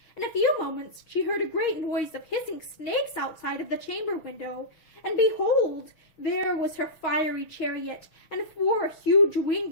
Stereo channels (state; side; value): late; right; 6.3 ms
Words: In a few moments she heard a great noise of hissing snakes outside of the chamber window, and behold, there was her fiery chariot, and 4 huge